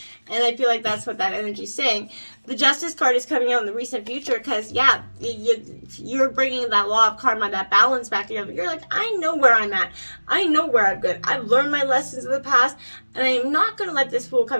And I feel like that's what that energy is saying. The Justice card is coming out in the recent future because, yeah, you're bringing that law of karma, that balance back together. You're like, I know where I'm at. I know where I'm good. I've learned my lessons of the past, and I am not going to let this fool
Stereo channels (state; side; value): inverted; both; correlation -1.00